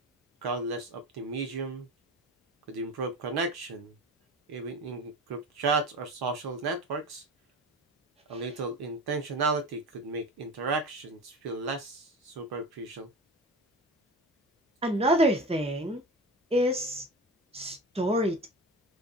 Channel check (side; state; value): both; normal; correlation 0.31